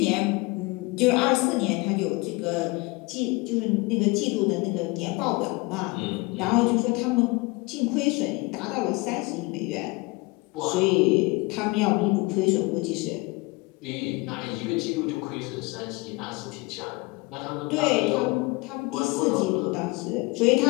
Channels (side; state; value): right; quieter; 24.8 dB